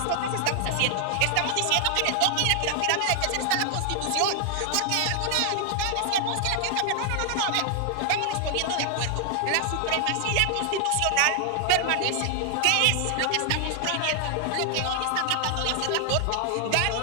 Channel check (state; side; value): different; both; correlation 0.00